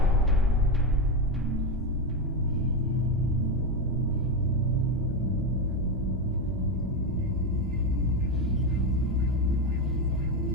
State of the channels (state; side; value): normal; both; correlation 0.12